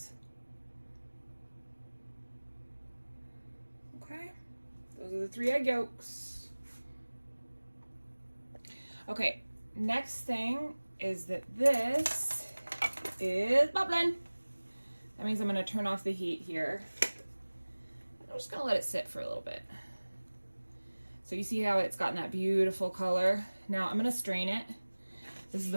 Okay, those are the 3 egg yolks. Okay, next thing is that this is bubbling. That means I'm gonna turn off the heat here. I'm just gonna let it sit for a little bit. So you see how it's gotten that beautiful color? Now I'm gonna strain it. This is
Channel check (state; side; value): inverted; both; correlation -1.00